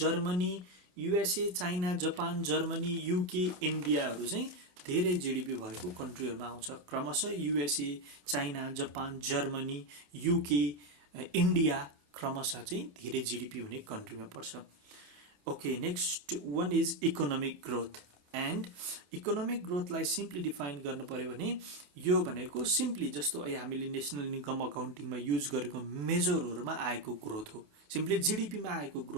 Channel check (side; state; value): left; late; 28 ms